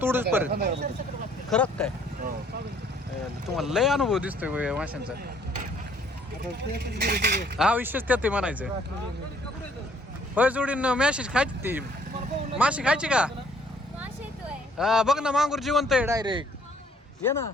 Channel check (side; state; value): both; normal; correlation 0.62